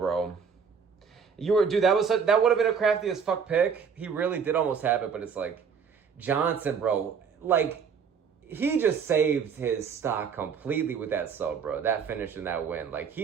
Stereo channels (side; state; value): left; quieter; 6.5 dB